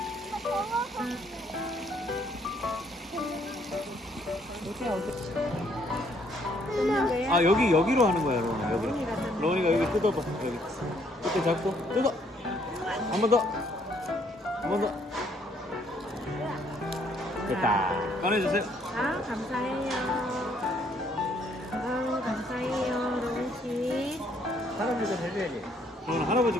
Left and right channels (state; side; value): normal; both; correlation 0.67